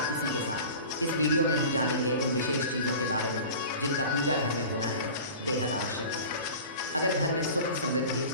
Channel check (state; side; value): inverted; both; correlation -0.38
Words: इसी के साथ। इस वीडियो में हम जानेंगे उन विशेष चीज़ों के बारे में जिनका पूजा घर में होना है बेहद आवश्यक है। अगर घर में सुख समृद्धि